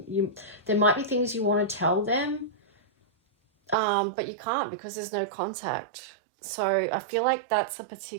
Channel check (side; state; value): left; drops out; at 3.8 s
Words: There might be things you want to tell them, but you can't because there's no contact. So I feel like that's a